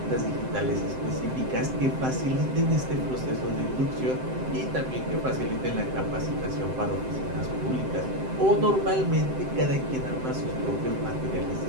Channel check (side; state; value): left; late; 7.7 ms